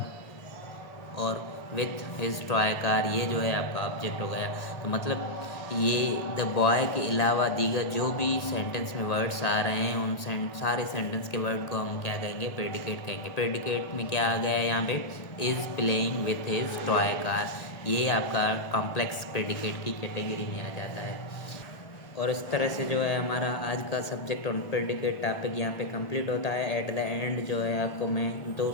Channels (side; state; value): right; late; 1.9 ms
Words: और विथ हिज टॉय कार ये जो है आपका ऑब्जेक्ट हो गया। तो मतलब ये द बॉय के अलावा दीगर जो भी सेंटेंस में वर्ड्स आ रहे हैं उन सारे सेंटेंस के वर्ड को हम क्या कहेंगे? प्रेडिकेट कहेंगे। प्रेडिकेट में क्या आ गया यहाँ पे? Is playing with his toy car. ये आपका कॉम्प्लेक्स प्रेडिकेट की कैटेगरी में आ जाता है। और इस तरह से जो है हमारा आज का सब्जेक्ट ऑन प्रेडिकेट टॉपिक यहाँ पे कंप्लीट होता है। एट द एंड जो है आपको मैं दो